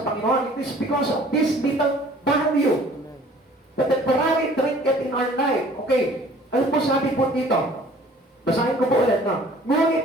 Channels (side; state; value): both; normal; correlation 0.52